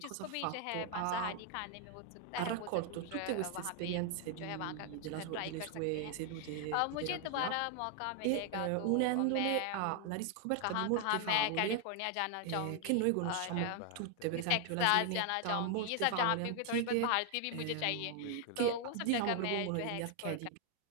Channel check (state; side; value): different; both; correlation 0.00